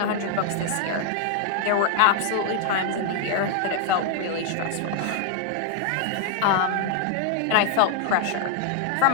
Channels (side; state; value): both; different; correlation 0.00